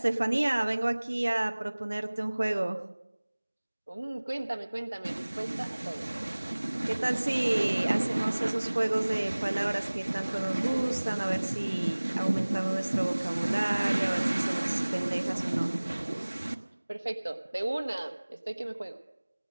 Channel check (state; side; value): inverted; both; correlation -1.00